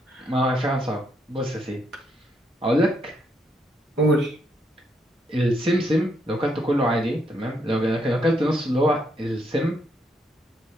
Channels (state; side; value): normal; both; correlation 0.76